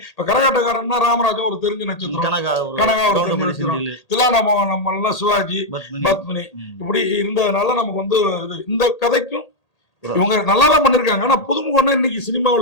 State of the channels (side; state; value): right; late; 1.8 ms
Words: இப்ப கரகாட்டக்காரன்னா ராமராஜா ஒரு தெரிஞ்ச நட்சத்திரம், கனகா ஒரு தெரிஞ்ச நட்சத்திரம், தில்லானாம சிவாஜி, பத்மினி இப்படி இருந்ததுனால நமக்கு வந்து இந்த கதைக்கும் இவங்க நல்லாதான் பண்ணிருக்காங்க. ஆனா புதுமுகம்னா இன்னைக்கு